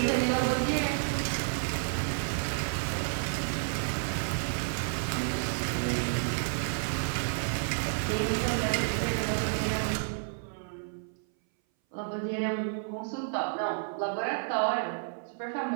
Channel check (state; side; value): silent; left; 57 dB below the other